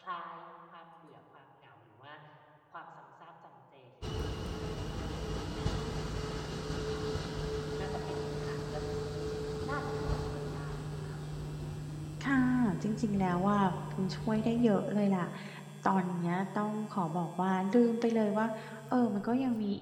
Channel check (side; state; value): both; identical; correlation 1.00